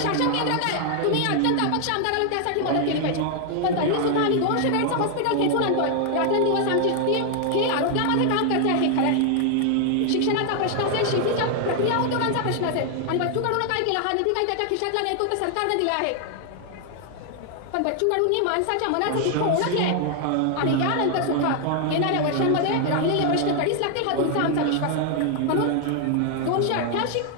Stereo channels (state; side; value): different; both; correlation 0.00